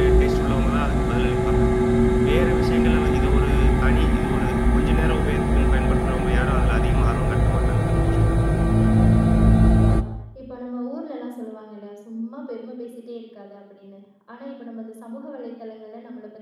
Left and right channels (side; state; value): both; identical; correlation 1.00